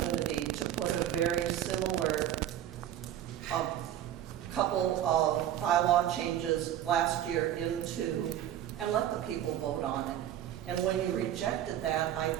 to put a very similar couple of bylaw changes last year into, and let the people vote on it. And when you rejected that, I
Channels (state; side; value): quieter; left; 11.4 dB